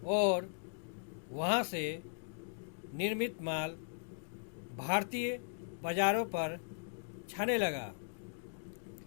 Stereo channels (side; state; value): right; silent; digital silence